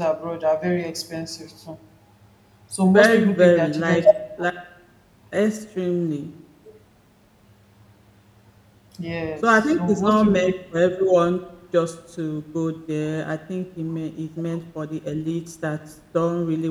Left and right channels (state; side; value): identical; both; correlation 1.00